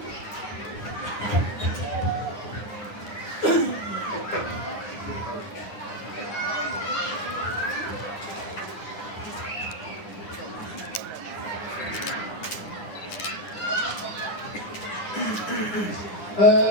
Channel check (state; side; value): late; right; 9.8 ms